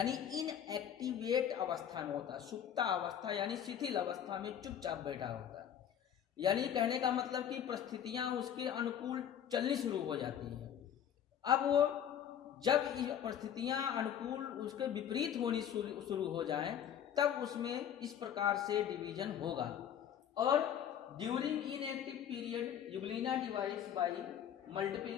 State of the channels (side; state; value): right; quieter; 9.4 dB